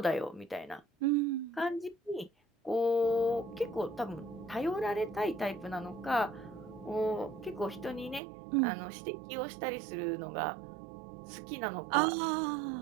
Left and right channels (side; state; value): left; drops out; at 8.2 s